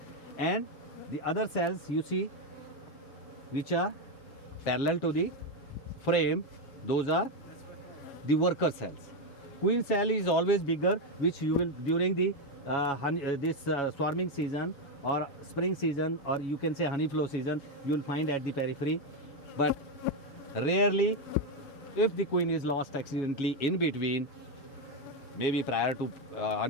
And the other cells you see, which are parallel to the frame, those are the worker cells. Queen cell is always bigger, which you will during the swarming season or spring season, or you can say honey flow season, you will find at the periphery. But rarely, if the queen is lost accidentally in between, maybe prior to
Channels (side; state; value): right; late; 7.3 ms